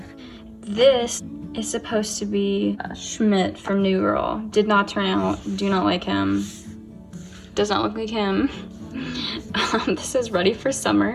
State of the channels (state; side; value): identical; both; correlation 1.00